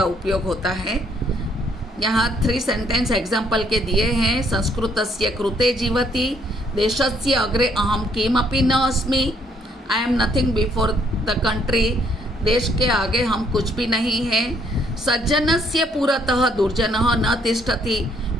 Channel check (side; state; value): both; normal; correlation 0.68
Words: उपयोग होता है। यहाँ 3 सेंटेंस एग्जाम्पल के दिए हैं। संस्कृतस्य कृते जीवति, देशस्य अग्रे अहम किमपि न अस्मि, I am nothing before the country, देश के आगे हम कुछ भी नहीं हैं। सज्जनस्य पुरतः दुर्जनः न तिष्ठति,